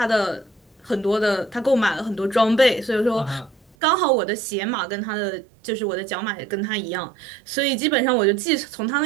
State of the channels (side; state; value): left; drops out; at 3.8 s